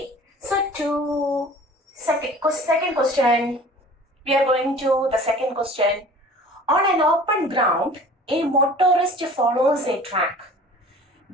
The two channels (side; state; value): both; normal; correlation 0.45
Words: So to second question, we are going to the second question. On an open ground, a motorist follows a track